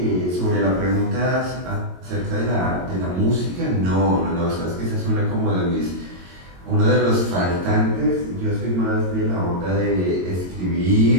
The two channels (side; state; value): left; late; 22 ms